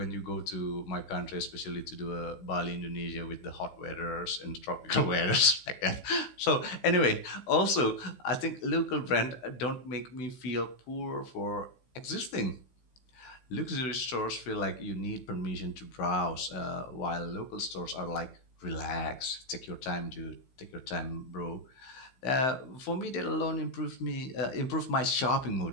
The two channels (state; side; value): late; right; 16 ms